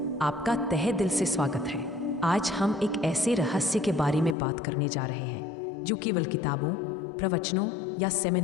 आपका तहे दिल से स्वागत है। आज हम एक ऐसे रहस्य के बारे में बात करने जा रहे हैं जो केवल किताबों, प्रवचनों या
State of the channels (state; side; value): drops out; right; at 4.4 s